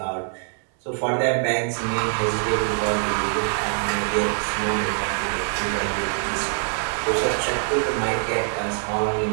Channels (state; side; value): silent; left; digital silence